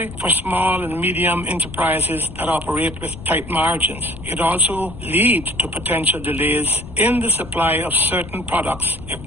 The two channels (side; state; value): left; noise; rumble, 14 dB below the sound